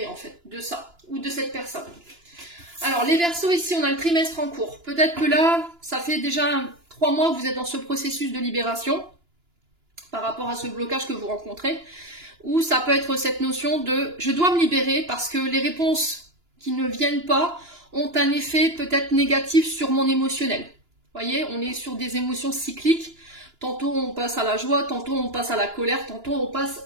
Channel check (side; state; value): left; late; 2.9 ms